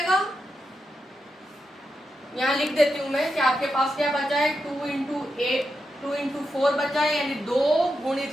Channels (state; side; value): normal; both; correlation 0.87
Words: यहाँ लिख देती हूं मैं कि आपके पास क्या बचा है, 2 इंटू 4 बचा है, यानी 2